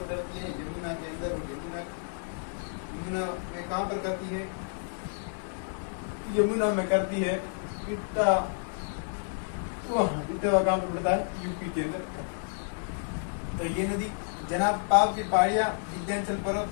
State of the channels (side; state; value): right; silent; digital silence